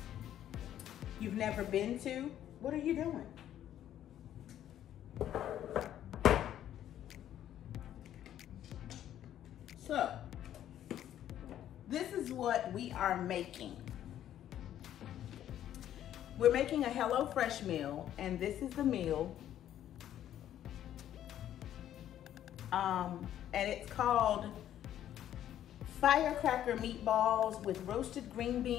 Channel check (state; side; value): quieter; right; 11.3 dB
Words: you've never been to? What are you doing? So, this is what we are making. We're making a HelloFresh meal, and this is the meal. And it's called firecracker meatballs with roasted green